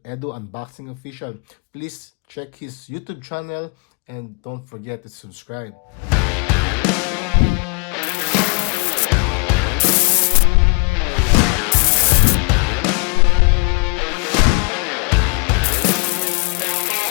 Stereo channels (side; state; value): right; quieter; 33.9 dB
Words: Edu Unboxing Official. Please check his YouTube channel and don't forget to subscribe.